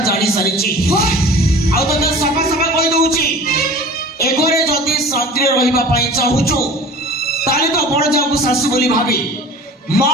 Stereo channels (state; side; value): normal; both; correlation 0.41